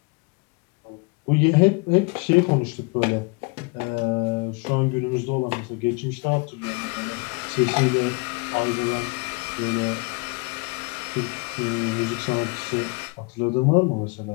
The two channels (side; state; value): right; quieter; 29.0 dB